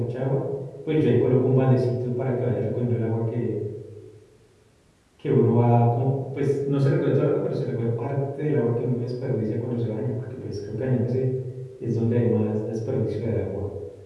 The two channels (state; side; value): identical; both; correlation 1.00